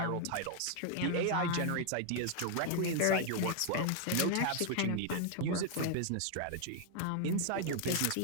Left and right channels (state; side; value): different; both; correlation 0.00